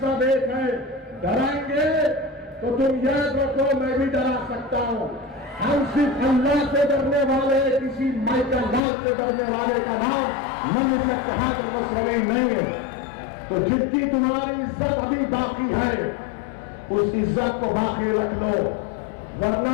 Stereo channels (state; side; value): drops out; right; at 8.8 s